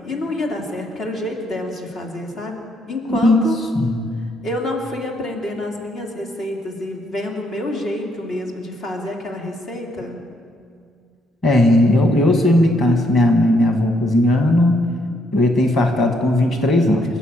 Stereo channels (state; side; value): normal; both; correlation 0.73